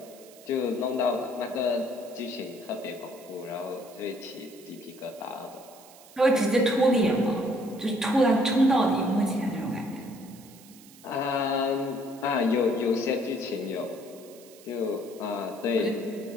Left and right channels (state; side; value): noise; right; hiss, 22 dB below the sound